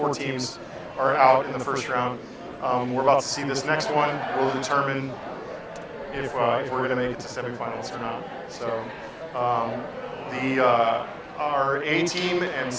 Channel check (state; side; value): identical; both; correlation 1.00